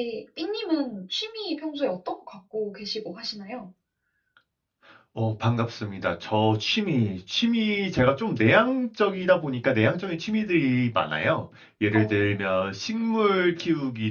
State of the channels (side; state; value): both; identical; correlation 1.00